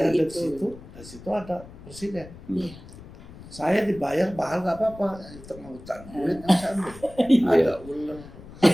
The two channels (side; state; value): left; noise; rumble, 17 dB below the sound